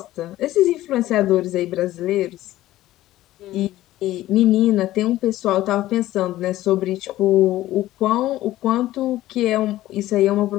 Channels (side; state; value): right; quieter; 15.2 dB